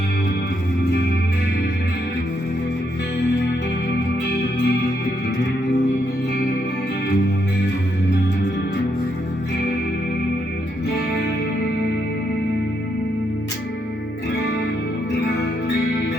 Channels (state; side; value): normal; both; correlation 0.77